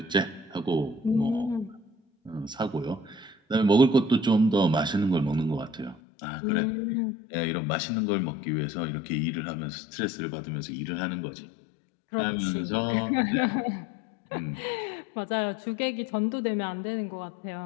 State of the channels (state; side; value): drops out; right; at 6.0 s